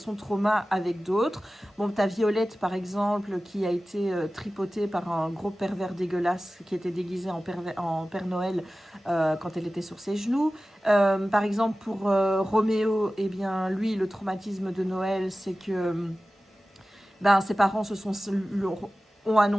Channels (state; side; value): normal; both; correlation 0.96